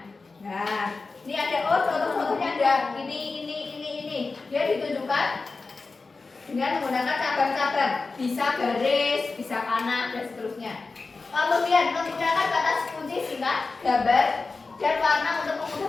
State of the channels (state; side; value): quieter; right; 4.0 dB